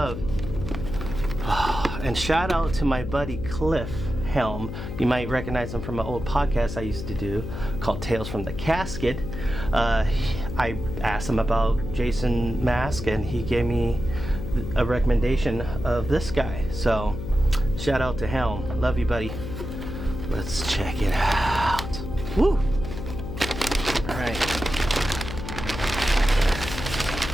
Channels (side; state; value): left; noise; hum, 7 dB below the sound